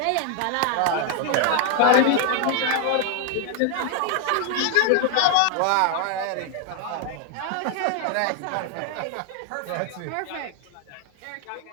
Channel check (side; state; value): both; different; correlation 0.00